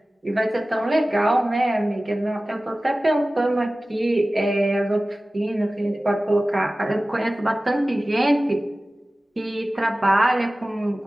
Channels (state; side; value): normal; both; correlation 0.97